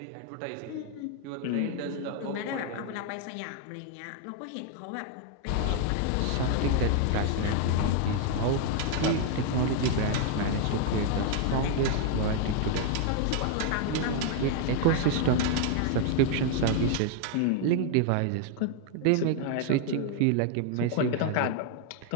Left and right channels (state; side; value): different; both; correlation 0.00